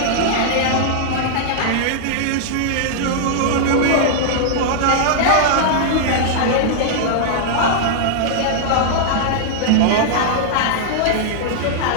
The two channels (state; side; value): different; both; correlation -0.01